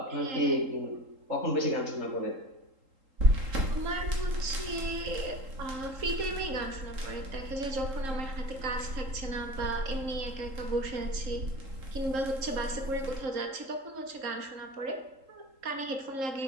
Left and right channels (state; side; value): late; left; 3.8 ms